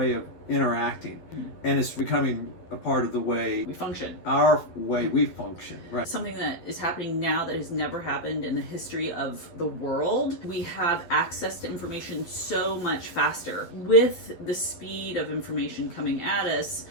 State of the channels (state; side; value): late; right; 12 ms